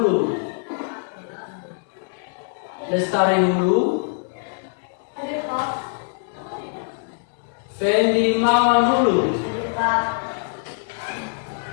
Fendi Mawan Hulu,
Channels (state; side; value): silent; right; digital silence